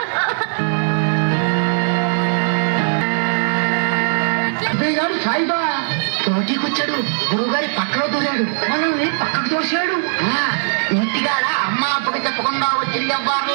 గారు సాయిబా తోటికొచ్చాడు. గురువుగారి పక్కలో దూరాడు, మనల్ని పక్కకు తోసాడు. ఇంటికాడ అమ్మ అప్పకి చెప్పకుండా వచ్చి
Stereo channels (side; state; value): left; silent; 67 dB below the other